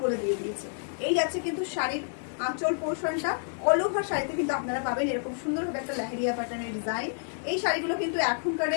বলে দিয়ে দিয়েছে। এই যাচ্ছে কিন্তু শাড়ির আঁচল পোর্শনটা, অল ওভার শাড়িতে কিন্তু আপনারা পাবেন এরকম সুন্দরভাবে একটা লেহেরিয়া প্যাটার্নের ডিজাইন। এই শাড়িগুলো কিন্তু এখনকার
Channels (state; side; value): silent; right; 59 dB below the other